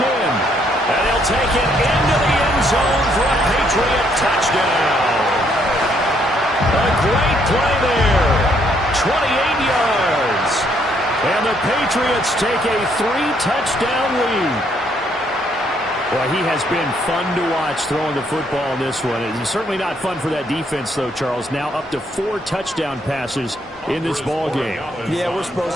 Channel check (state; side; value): normal; both; correlation 0.70